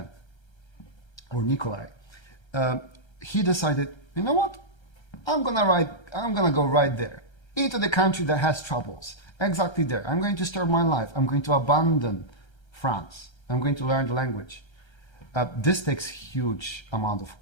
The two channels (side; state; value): right; late; 1.3 ms